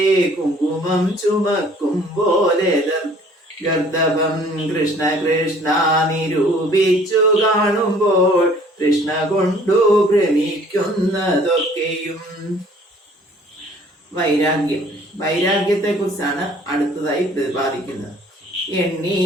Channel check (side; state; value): both; normal; correlation 0.55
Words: കുങ്കുമം ചുമക്കും പോലെ ഗർദഭം കൃഷ്ണ കൃഷ്ണ നിരൂപിച്ചു കാണുമ്പോൾ കൃഷ്ണ കൊണ്ടു ഭ്രമിക്കുന്നതൊക്കെയും. വൈരാഗ്യത്തെ കുറിച്ചാണ് അടുത്തതായി പ്രതിപാദിക്കുന്നത്.